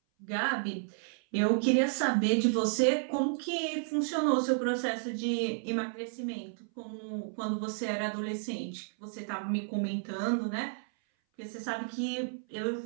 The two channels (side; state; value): left; silent; 56 dB below the other